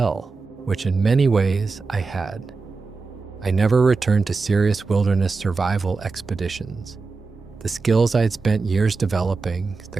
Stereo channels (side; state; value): left; quieter; 4.3 dB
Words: which in many ways I had. I never returned to serious wilderness survival expeditions. The skills I had spent years developing,